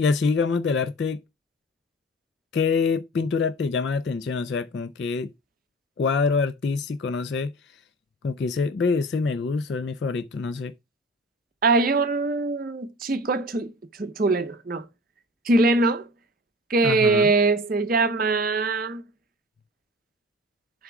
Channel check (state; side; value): normal; both; correlation 0.39